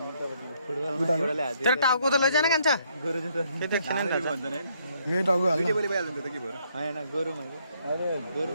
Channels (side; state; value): both; inverted; correlation -0.70